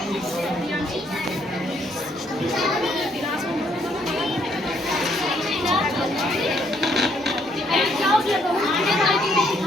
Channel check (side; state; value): both; normal; correlation 0.69